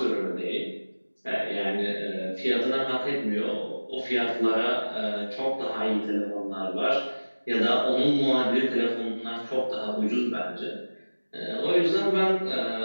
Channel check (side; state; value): both; inverted; correlation -1.00